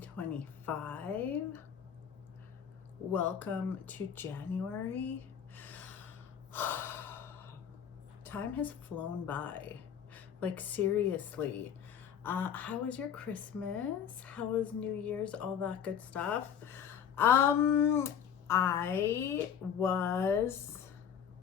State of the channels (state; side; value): quieter; right; 8.3 dB